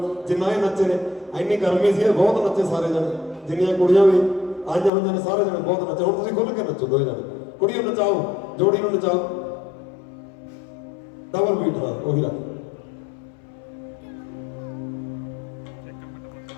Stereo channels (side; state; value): right; drops out; at 4.9 s